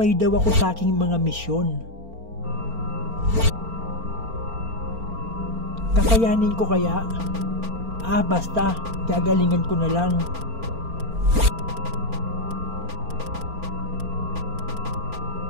daw ako sa aking mga misyon. Kakayanin ko kaya? Basta, gagalingan ko na lang.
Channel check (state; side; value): late; left; 4.4 ms